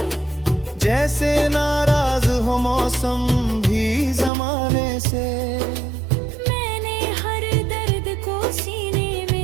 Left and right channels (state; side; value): drops out; left; at 4.3 s